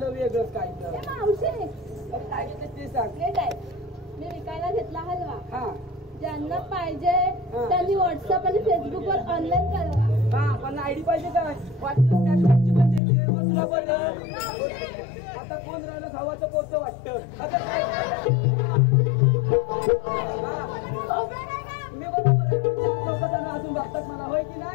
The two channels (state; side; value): drops out; right; at 13.0 s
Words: वेगळंच काय तर ए मावशी काय घेतोय ते सांग नीट ऐक. मी विकायला घेतला हलवा. हा ज्यांना पाहिजे त्यांनी व्हॉट्सअप आणि फेसबुक वर ऑनलाईन कळवा. हा पण आयडी पाहिजे काय वाटलं स्नॅपचॅटची पण देते मग तुला बरं आता कोण राहिलं भावाचं पोतं वाटतं मी बरोबर आहे लोक जण अजून बघतात मला होय की